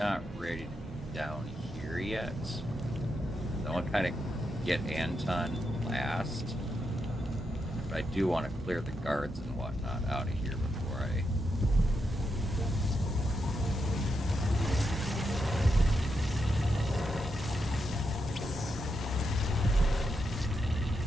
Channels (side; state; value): both; normal; correlation 0.84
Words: ready to be down here yet. I want to kind of get Anton last. But I do want to clear the guards and whatnot out of here before I...